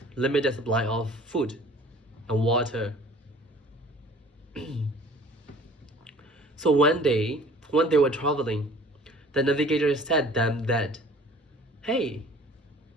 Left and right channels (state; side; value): normal; both; correlation 0.49